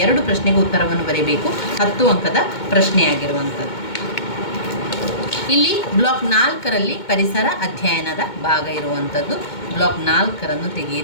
2 ಪ್ರಶ್ನೆಗೆ ಉತ್ತರವನ್ನು ಬರೀಬೇಕು. 10 ಅಂಕದ ಪ್ರಶ್ನೆಯಾಗಿರುವಂಥದ್ದು. ಇಲ್ಲಿ ಬ್ಲಾಕ್ 4ರಲ್ಲಿ ಪರಿಸರ ಅಧ್ಯಯನದ ಭಾಗ ಇರುವಂಥದ್ದು. ಬ್ಲಾಕ್ 4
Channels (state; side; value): late; right; 2.2 ms